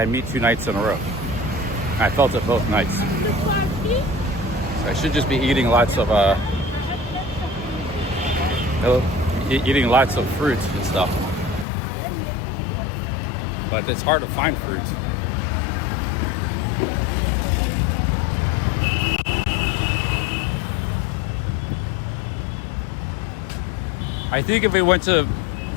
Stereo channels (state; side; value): drops out; right; at 11.7 s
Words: meat 2 nights in a row. I felt it both nights. So I should just be eating lots of eating lots of fruit and stuff. But it's hard to find fruit. I think if we went to